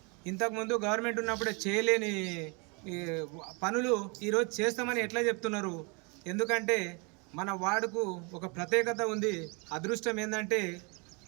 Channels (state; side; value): quieter; left; 31.6 dB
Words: ఇంతకుముందు గవర్నమెంట్ ఉన్నప్పుడే చేయలేని పనులు ఈరోజు చేస్తామని ఎట్లా చెప్తున్నారు? ఎందుకంటే మన వార్డుకు ఒక ప్రత్యేకత ఉంది. అదృష్టం ఏంటంటే